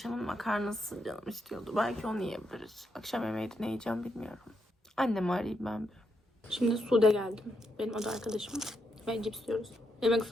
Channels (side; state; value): both; normal; correlation 0.81